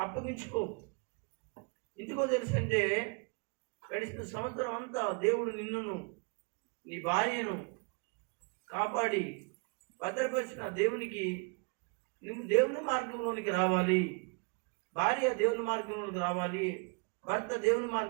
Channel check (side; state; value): left; quieter; 33.8 dB